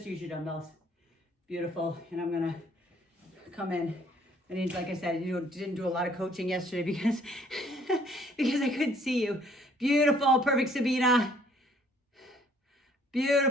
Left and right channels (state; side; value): normal; both; correlation 0.61